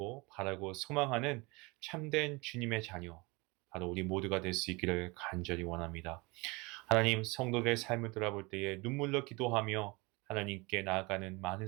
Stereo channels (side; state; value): left; quieter; 25.9 dB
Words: 바라고 소망하는 참된 주님의 자녀, 바로 우리 모두가 될 수 있기를 간절히 원합니다. 하나님, 성도들의 삶을 돌아볼 때에 눈물로 기도하며 하나님께 나아가는 많은